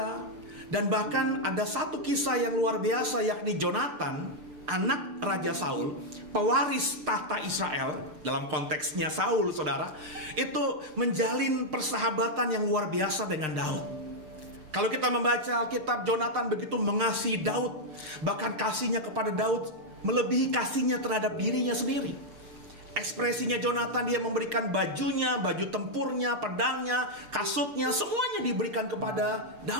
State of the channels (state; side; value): late; left; 6.8 ms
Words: Dan bahkan ada satu kisah yang luar biasa, yakni Jonatan, anak Raja Saul, pewaris tahta Israel. Dalam konteksnya Saul saudara, itu menjalin persahabatan yang luar biasa dengan Daud. Kalau kita membaca Alkitab, Jonatan begitu mengasihi Daud. Bahkan kasihnya kepada Daud melebihi kasihnya terhadap dirinya sendiri. Ekspresinya Jonatan, dia memberikan bajunya, baju tempurnya, pedangnya, kasutnya, semuanya diberikan kepada